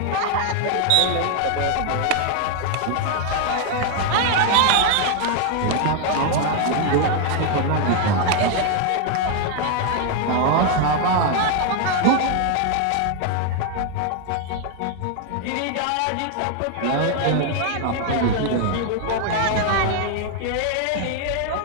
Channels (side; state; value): both; different; correlation 0.00